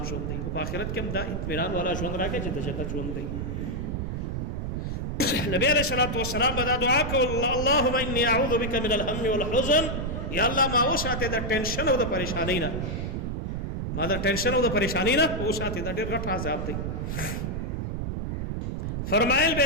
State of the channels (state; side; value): noise; right; rumble, 3 dB below the sound